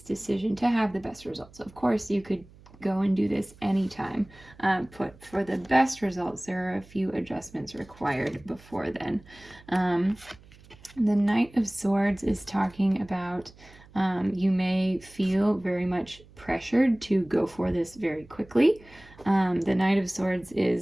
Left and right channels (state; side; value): noise; right; hum, 24 dB below the sound